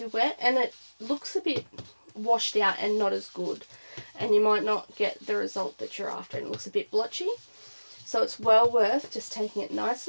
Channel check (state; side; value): inverted; both; correlation -1.00